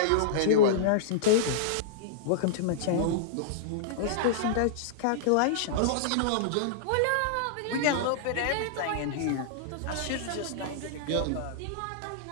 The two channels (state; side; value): different; both; correlation -0.02